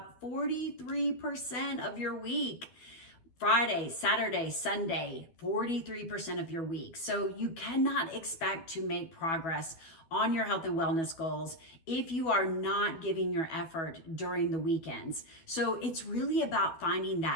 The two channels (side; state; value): right; late; 12 ms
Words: 43% of your week. Friday, Saturday, Sunday, 43% of your week. So you cannot expect to make progress on your health and wellness goals if you are not giving your effort during the weekends. So it's really about finding